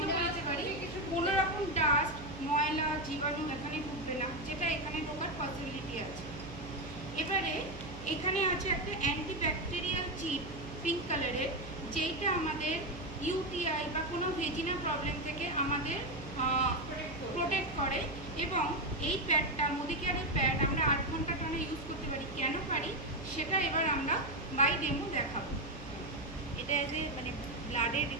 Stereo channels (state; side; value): noise; right; hum, 13 dB below the sound